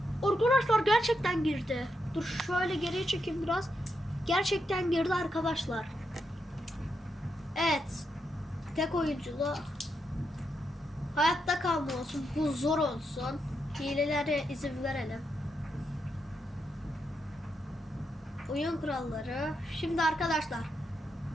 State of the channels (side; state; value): both; normal; correlation 0.83